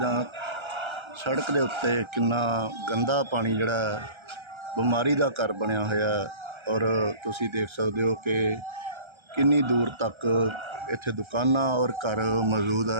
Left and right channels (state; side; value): late; left; 1.3 ms